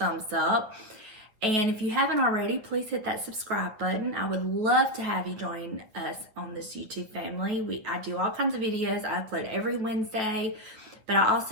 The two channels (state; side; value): late; left; 9.3 ms